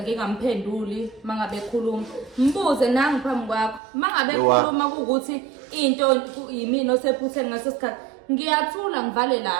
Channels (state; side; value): drops out; left; at 3.8 s